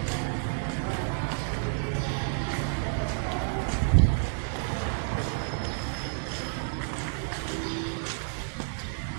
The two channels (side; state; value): left; silent; 58 dB below the other